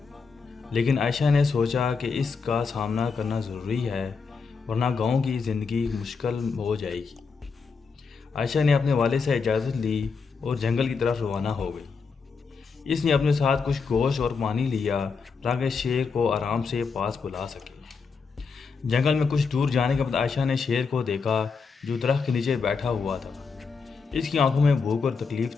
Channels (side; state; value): right; quieter; 5.1 dB